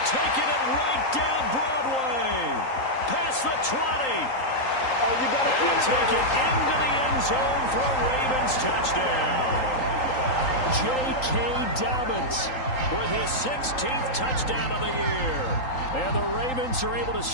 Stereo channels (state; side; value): late; right; 3.8 ms